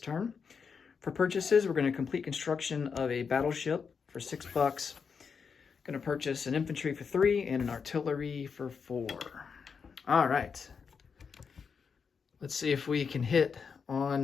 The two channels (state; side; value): quieter; right; 5.9 dB